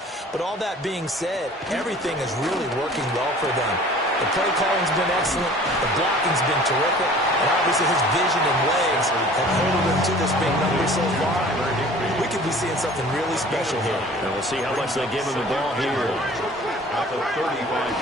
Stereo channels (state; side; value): normal; both; correlation 0.47